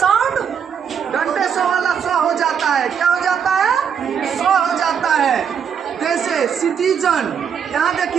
डंटे स वाला स हो जाता है। क्या हो जाता है? स हो जाता है। जैसे सिटीजन, यहाँ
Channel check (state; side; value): quieter; left; 7.5 dB